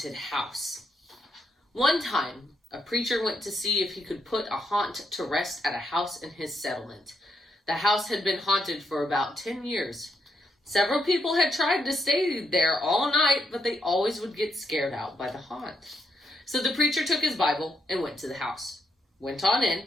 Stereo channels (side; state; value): both; normal; correlation 0.78